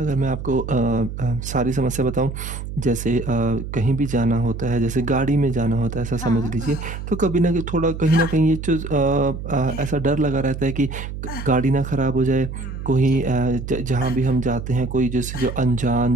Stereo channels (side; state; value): right; noise; hum, 8 dB below the sound